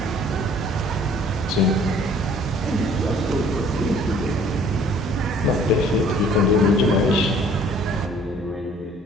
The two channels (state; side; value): normal; both; correlation 0.55